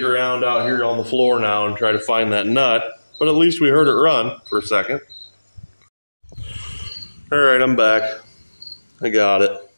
around out here on the floor now and try to find that nut, but at least we heard it run for a second. All right, I'm back. I got it.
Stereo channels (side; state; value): both; inverted; correlation -1.00